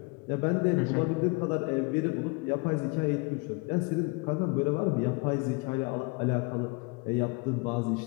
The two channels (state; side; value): quieter; right; 28.9 dB